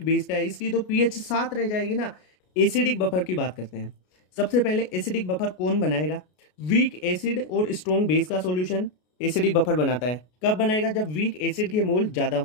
बेस का है, इसकी तो पीएच 7 रह जाएगी ना। एसिडिक बफर की बात करते हैं। सबसे पहले एसिडिक बफर कौन बनाएगा? वीक एसिड और स्ट्रॉन्ग बेस का सॉल्यूशन एसिडिक बफर बनाता है। कब बनाएगा? जब वीक एसिड के मोल ज्यादा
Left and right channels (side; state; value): right; late; 33 ms